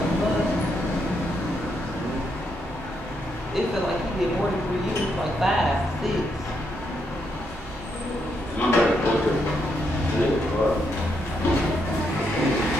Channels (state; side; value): normal; both; correlation 0.78